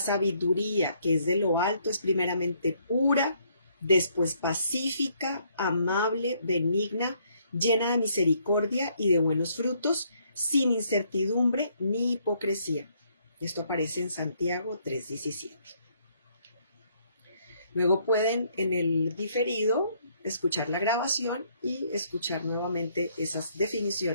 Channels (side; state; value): both; inverted; correlation -0.68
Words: que es de lo alto, es primeramente pura, después pacífica, amable, benigna, llena de misericordia y de buenos frutos, sin incertidumbre ni hipocresía. Esto aparece en Santiago 3:17. Luego pueden en el diferido escuchar la grabación y escuchar nuevamente esas